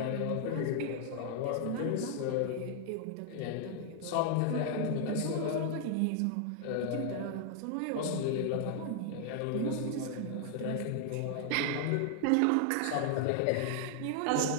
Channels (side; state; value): both; different; correlation 0.00